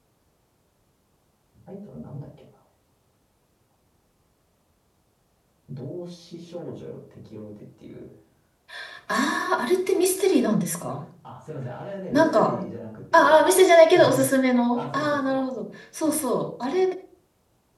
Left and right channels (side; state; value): both; identical; correlation 1.00